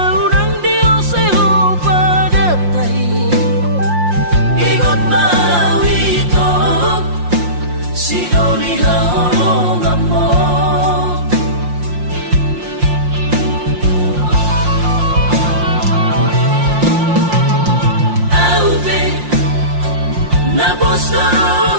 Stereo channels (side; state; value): left; late; 5.7 ms